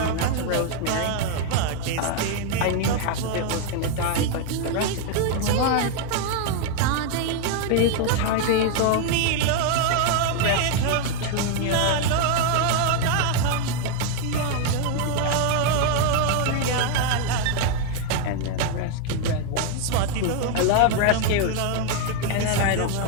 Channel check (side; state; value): both; different; correlation 0.01